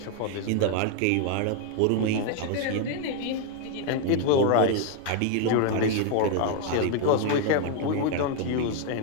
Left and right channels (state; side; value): different; both; correlation 0.01